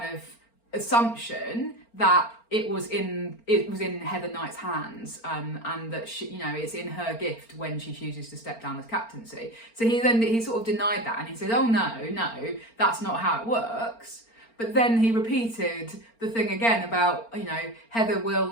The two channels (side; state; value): right; late; 4.4 ms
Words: of assumption that it was in Heather Knight's hands, and that she, it's in her gift when she chooses to step down as captaincy. So he sort of denied that, and he said, "Oh no, that's not how it works." But then he repeated the thing again about Heather